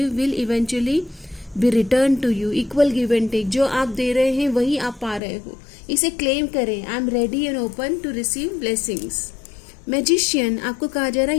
will eventually be returned to you, equal give and take। जो आप दे रहे हैं वही आप पा रहे हो, इसे क्लेम करें। I am ready and open to receive blessings. Magician, आपको कहा जा रहा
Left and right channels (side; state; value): right; drops out; at 5.2 s